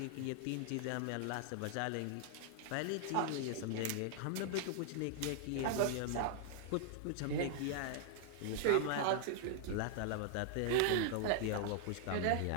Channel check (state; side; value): different; both; correlation 0.00